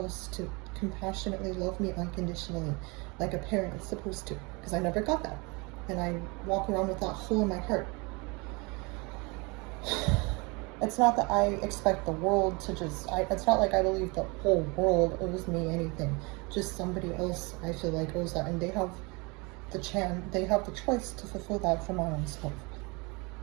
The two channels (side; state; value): left; quieter; 28.1 dB